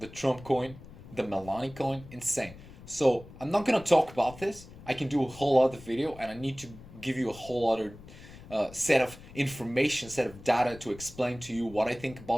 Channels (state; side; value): noise; left; rumble, 18 dB below the sound